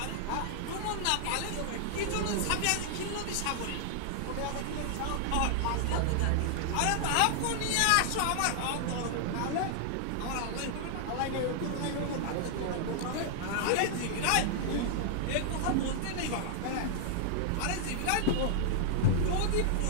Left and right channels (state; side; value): different; both; correlation -0.01